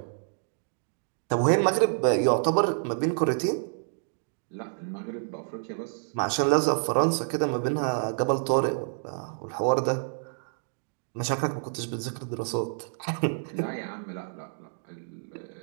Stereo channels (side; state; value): left; silent; digital silence